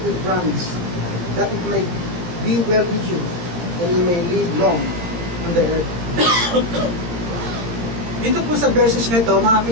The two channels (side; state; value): left; late; 18 ms